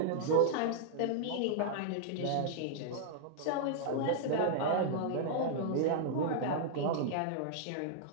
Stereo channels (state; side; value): different; both; correlation -0.01